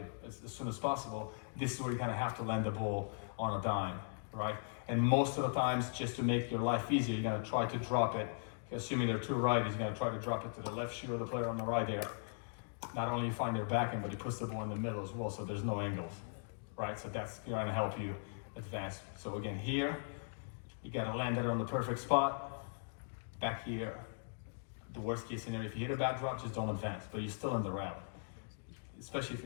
as soon as possible. This is where you kind of have to land the ball on a dime, right? And most of the times, just to make your life easier, you're going to try to drop it. Assuming there are two righties, you're going to try to drop it to the left shoe of the player on the right there. Not only you find their backhand, but he puts the ball in the middle as well, so there's no angles, right? So that's going to help you advance. So again, here, you got to land it on the perfect spot. Back here, the worst case scenario, if you hit a bad drop, just don't advance, but you're still in the rally. Especially if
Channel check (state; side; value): silent; right; digital silence